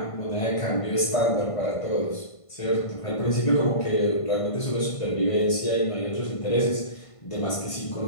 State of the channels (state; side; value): late; right; 1.5 ms